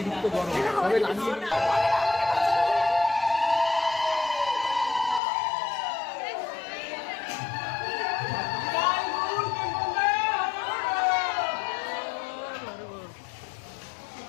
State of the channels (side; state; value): right; drops out; at 5.2 s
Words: গরম, তবে লাগিয়ে